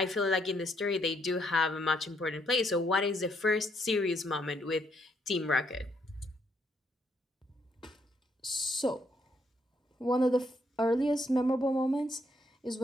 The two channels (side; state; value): both; normal; correlation 0.73